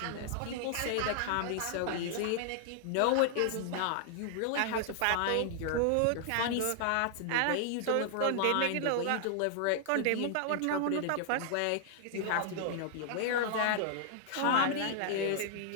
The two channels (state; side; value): different; both; correlation -0.01